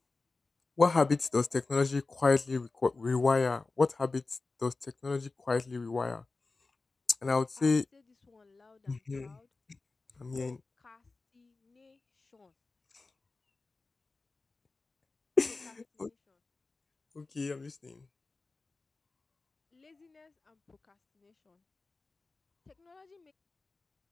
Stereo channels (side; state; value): right; quieter; 3.7 dB